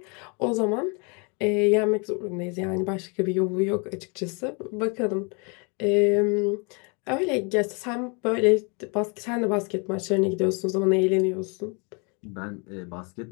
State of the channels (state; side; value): quieter; right; 33.5 dB